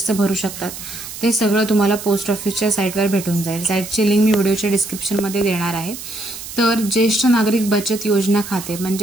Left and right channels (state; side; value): noise; right; hiss, 11 dB below the sound